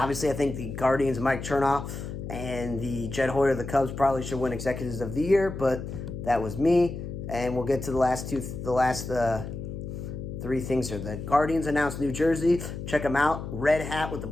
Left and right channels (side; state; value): left; noise; hum, 8 dB below the sound